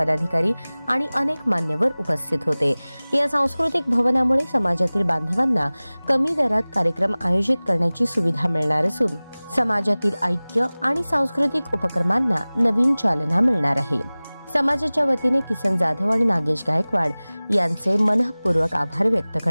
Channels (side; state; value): both; inverted; correlation -0.99